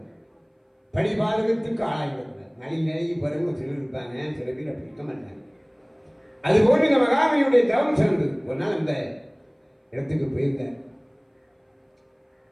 படிபாதகத்துக்கு ஆளாகிவிடக்கூடாது. நலி நிலையை பிறகு சிலர் இருப்பாங்க, சில பேர் அப்படி இருக்க மாட்டாங்க. அதுபோன்று இந்த மகாமணியுடைய தவம் சிறந்தது. ஒரு நாள் அந்த இடத்துக்கு போயிருந்தார்,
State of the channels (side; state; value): both; identical; correlation 1.00